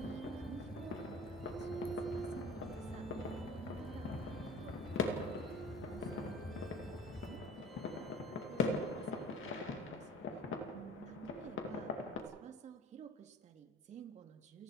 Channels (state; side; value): normal; both; correlation 0.44